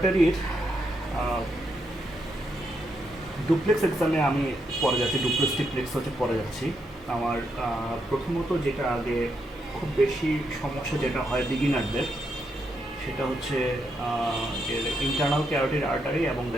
duplex এক্সামে আমি পড়ে যাচ্ছি, ডুপ্লেক্স ট্রিপ্লেক্স হচ্ছে পড়ে যাচ্ছি। আমার প্রথমত যেটা আগে খুব বেশি সমস্যা যেটা হয় বিগিনারদের, সেটা হচ্ছে ইন্টারনাল ক্যারোটিড আর্টারি এবং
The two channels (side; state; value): both; normal; correlation 0.80